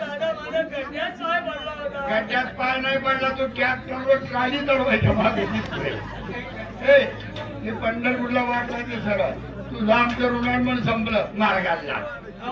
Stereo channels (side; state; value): both; identical; correlation 1.00